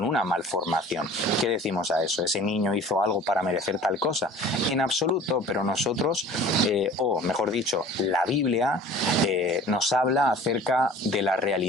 una malformación. ¿Qué decimos a eso? ¿Ese niño hizo algo para merecer tal cosa? En absoluto, pero nosotros, o mejor dicho, la Biblia nos habla acerca de la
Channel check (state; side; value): normal; both; correlation 0.45